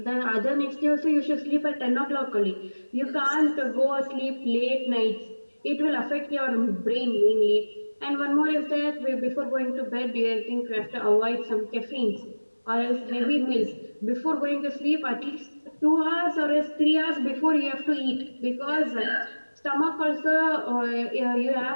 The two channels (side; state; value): both; inverted; correlation -1.00